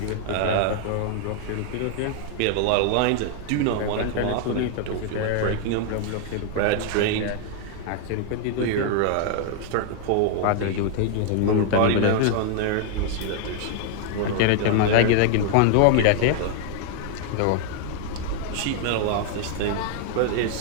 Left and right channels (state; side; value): different; both; correlation 0.00